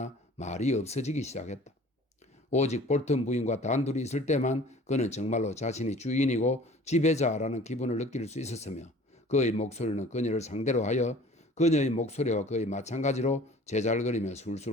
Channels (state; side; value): normal; both; correlation 0.47